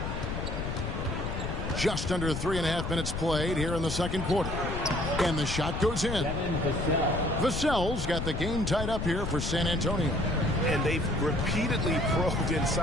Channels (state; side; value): noise; left; rumble, 3 dB below the sound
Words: Just under 3.5 minutes played here in the second quarter. And the shot goes in. Vassell's got the game tied up here for San Antonio. And they've repeatedly probed